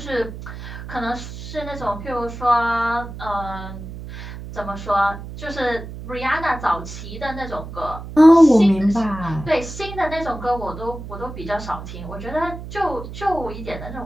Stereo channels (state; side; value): noise; right; hum, 11 dB below the sound